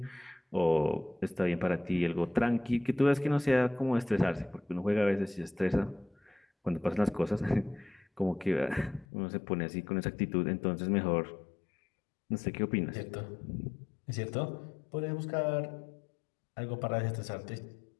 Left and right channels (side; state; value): right; drops out; at 9.1 s